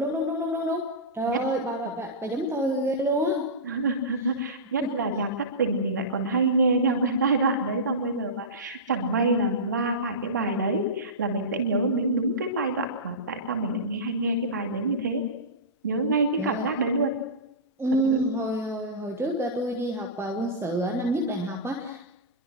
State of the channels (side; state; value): both; normal; correlation -0.18